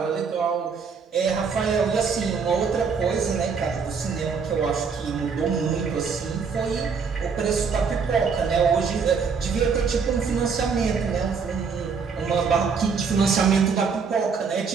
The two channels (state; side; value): quieter; left; 5.7 dB